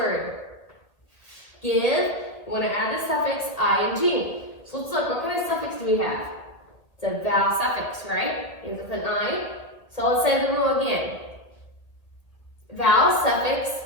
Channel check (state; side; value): late; right; 1.6 ms